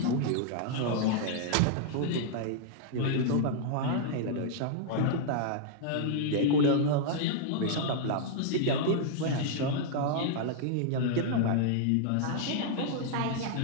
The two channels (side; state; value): both; different; correlation -0.01